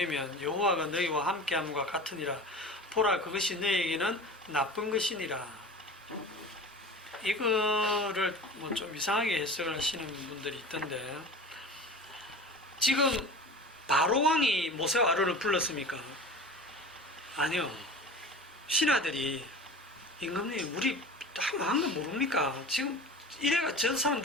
여호와가 너희와 함께함과 같으니라. 보라 그것이 너희에게는 나쁜 것이니라. 이거를 뭐 좀 이상하게 해석을 하시는 분들이 있던데, 지금 바로왕이 모세와 아론을 불렀습니까? 아니요. 신하들이 임금님 우리 한 거 모릅니까? 지금 이래가 저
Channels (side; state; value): both; normal; correlation 0.36